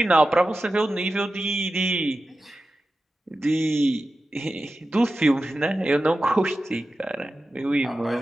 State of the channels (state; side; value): normal; both; correlation 0.93